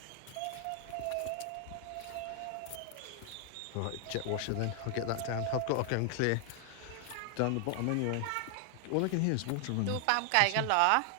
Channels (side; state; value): both; different; correlation 0.00